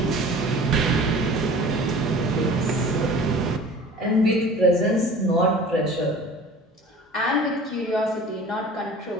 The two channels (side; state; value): both; normal; correlation 0.43